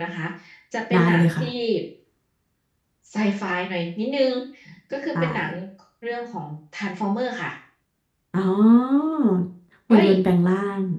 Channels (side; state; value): both; identical; correlation 1.00